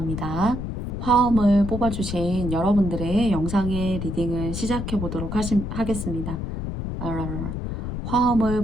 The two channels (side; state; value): left; noise; rumble, 5 dB below the sound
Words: 화음을 뽑아주신 여러분들의 영상의 리딩을 시작해보도록 하겠습니다. 화음을